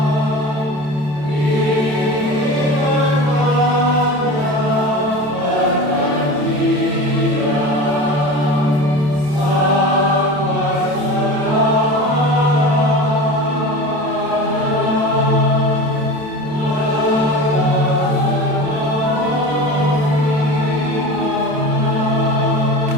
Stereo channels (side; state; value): left; late; 27 ms